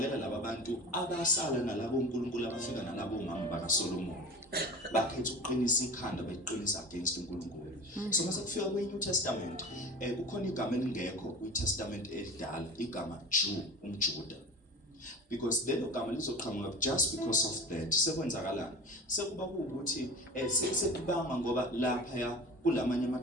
laba bantu abasala nalabo uNkulunkulu abafika nalabo umama bakaSolomon bakhetha ukuqinisa ikhanda beqinisa against uNkulunkulu. So mase kufika kweNew Testament kukhona igama elingekho kwiTestament elidala, igama Jew, umJuda. Because lelo gama lizoqhamuka just because of that. Sekwenzakalani? Sekuba ukuthi sekubanga ngoba lapha ya kulamanye ama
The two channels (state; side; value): normal; both; correlation 0.34